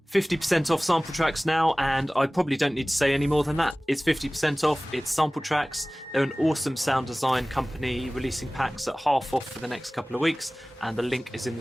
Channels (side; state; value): both; normal; correlation 0.98